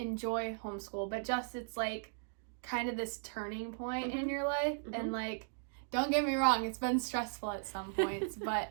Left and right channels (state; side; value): silent; left; digital silence